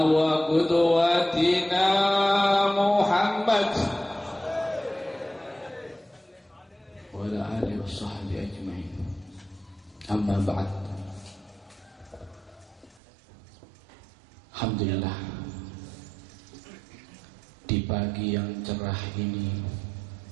wa qudwatina Muhammad wa ala alihi wa sahbihi ajma'in. Amma ba'd. Alhamdulillah, di pagi yang cerah ini,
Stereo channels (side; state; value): left; drops out; at 13.0 s